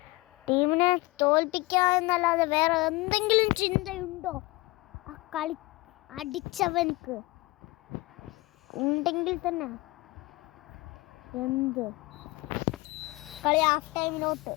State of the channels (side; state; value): right; quieter; 22.5 dB